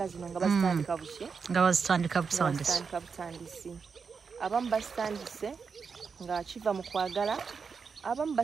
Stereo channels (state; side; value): quieter; left; 5.6 dB